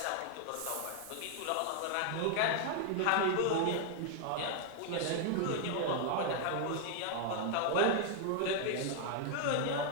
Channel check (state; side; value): different; both; correlation 0.00